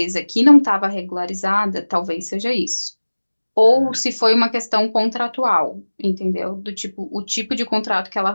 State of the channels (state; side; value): inverted; both; correlation -1.00